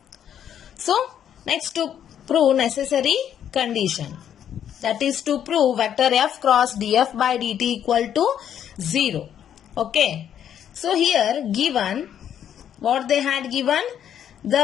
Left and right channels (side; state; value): right; quieter; 9.6 dB